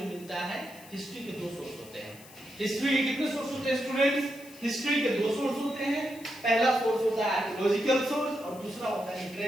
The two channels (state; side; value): noise; left; hiss, 20 dB below the sound